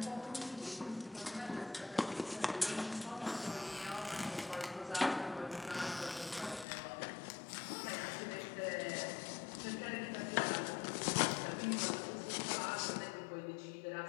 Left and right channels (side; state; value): right; drops out; at 6.7 s